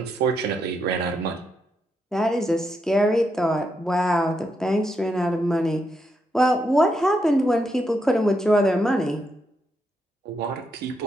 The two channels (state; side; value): normal; both; correlation 0.81